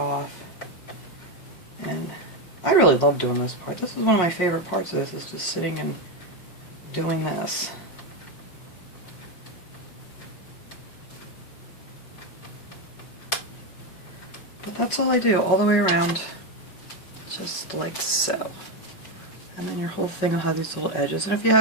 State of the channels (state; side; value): late; right; 5.4 ms